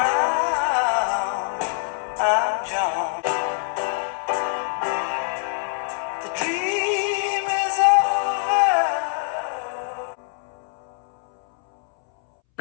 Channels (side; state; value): right; silent; 63 dB below the other